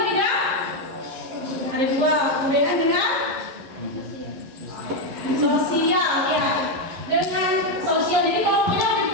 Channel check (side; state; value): left; late; 11 ms